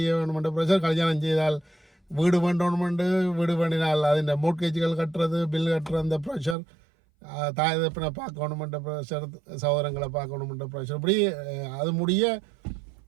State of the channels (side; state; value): left; drops out; at 6.6 s